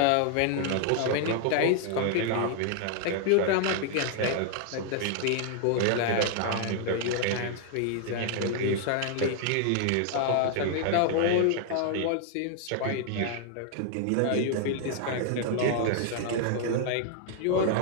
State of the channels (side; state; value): both; different; correlation 0.00